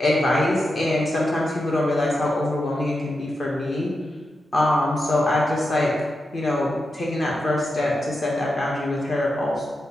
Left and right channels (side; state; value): both; normal; correlation 0.88